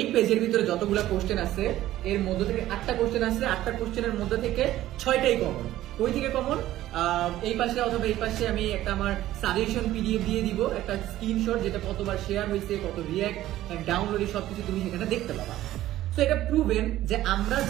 পেজের ভিতরে যতগুলো কোশ্চেন আছে এর মধ্যে থেকে 8টা কোশ্চেন আছে, 8টা কোশ্চেনের মধ্যে থেকে 6টাই কমন। কই থেকে কমন? এই পাশে অথবা এই পাশে আমি একটা আমার সাজেশন পিডিএফ দিয়ে দিব, একটা স্ক্রিনশট, যেটা কতবার শেয়ার হয়েছে, কত রিঅ্যাক্ট এন্ড ডাউনলোড, সবকিছু তুমি সেখানে দেখতে পাবা। তো এটা প্রুভেন যে আমরা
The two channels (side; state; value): left; quieter; 14.3 dB